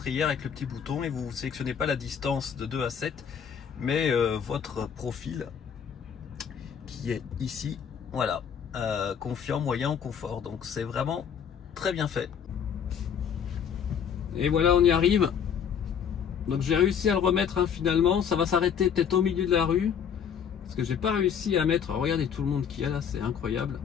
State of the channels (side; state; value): right; quieter; 7.7 dB